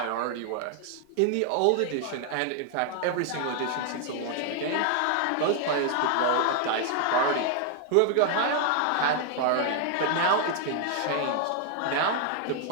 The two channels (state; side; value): different; both; correlation 0.00